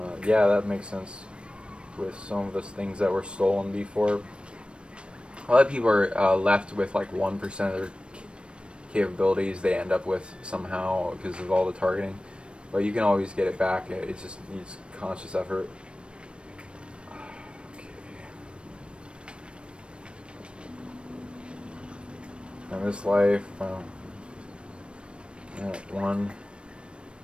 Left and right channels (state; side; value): late; left; 0.057 ms